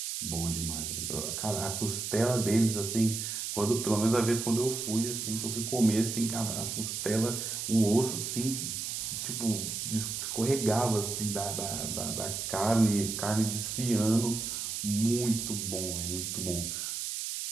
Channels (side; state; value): right; noise; hiss, 4 dB below the sound